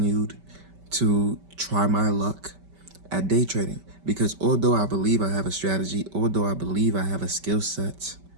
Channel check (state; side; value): late; left; 5.2 ms